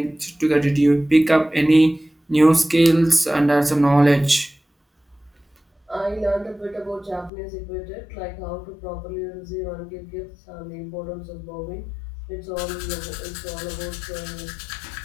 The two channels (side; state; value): right; drops out; at 7.3 s